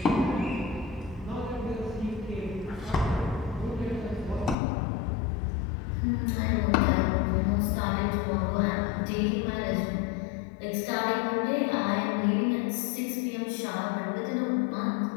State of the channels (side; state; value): right; drops out; at 4.5 s